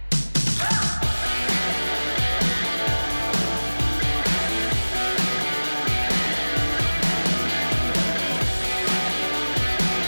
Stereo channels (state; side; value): inverted; both; correlation -1.00